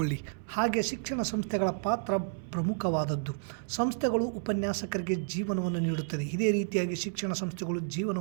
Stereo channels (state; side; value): silent; left; 57 dB below the other